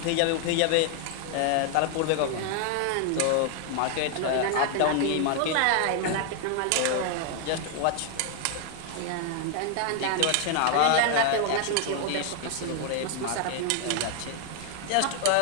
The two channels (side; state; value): both; different; correlation 0.00